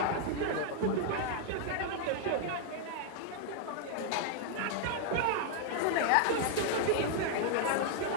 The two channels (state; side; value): different; both; correlation 0.00